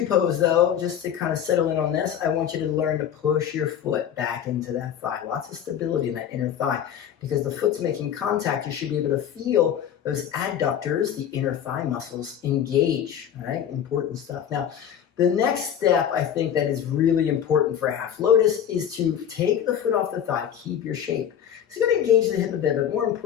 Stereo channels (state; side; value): quieter; right; 9.3 dB